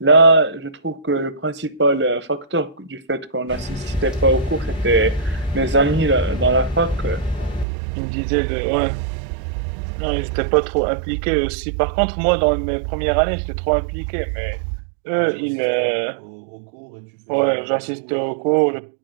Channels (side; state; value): left; drops out; at 7.7 s